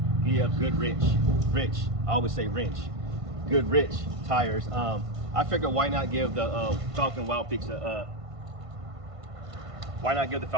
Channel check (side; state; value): left; late; 1.5 ms